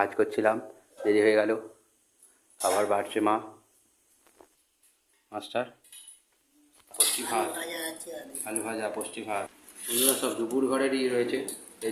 করছিলাম, দেরি হয়ে গেল। খাবার বাড়ছে মা। মাস্টার পুষ্টি ভাত, আলু ভাজা, পুষ্টি ভাত। বন্ধুরা সব দুপুর ঘরেরই রয়েছে।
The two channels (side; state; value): both; identical; correlation 1.00